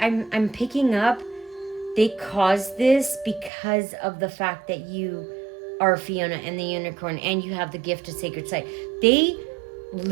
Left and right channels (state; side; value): drops out; left; at 3.5 s